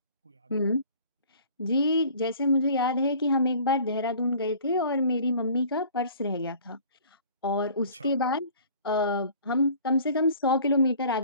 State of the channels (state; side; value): inverted; both; correlation -0.49